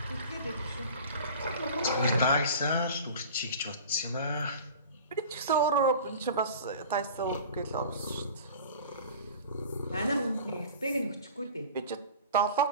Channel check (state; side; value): inverted; both; correlation -0.40